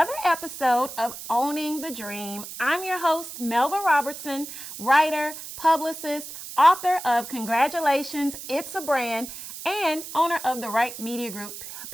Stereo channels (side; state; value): right; noise; hiss, 11 dB below the sound